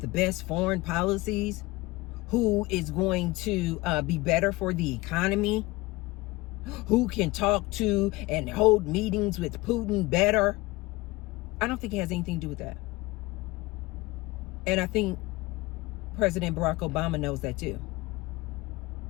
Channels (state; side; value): quieter; right; 21.3 dB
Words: best foreign policies, who is going to be better for the economy, who can talk to and hold meetings with Putin better. I don't think it has anything to do with that. And I think President Barack Obama knows that too.